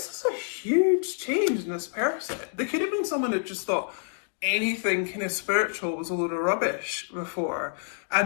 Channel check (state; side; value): silent; right; 58 dB below the other